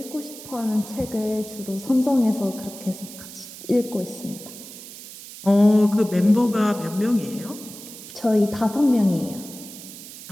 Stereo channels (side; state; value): right; noise; hiss, 14 dB below the sound